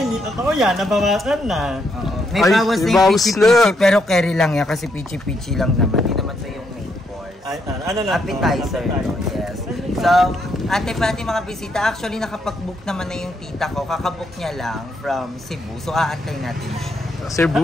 hindi totoo yan. Nabawasan na. Oo. May Ay, bawas na may yung bawas pichi-pichi, na. pero carry lang yan kasi pichi-pichi lang naman. Hindi naman ito yung main course. Ay, ano lang? Appetizer, no? Yes. So, ate pa natin mga bisita. Actually, nakapag-book naman na yung tita ko. Kakabook niya lang from Cebu. So, aantay natin siya. Cebu.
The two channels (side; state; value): both; normal; correlation 0.77